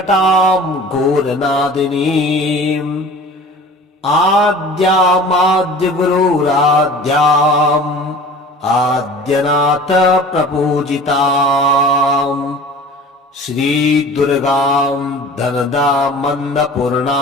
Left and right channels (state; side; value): normal; both; correlation 0.42